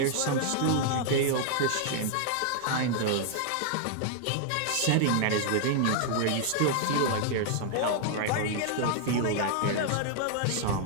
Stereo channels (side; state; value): both; different; correlation 0.00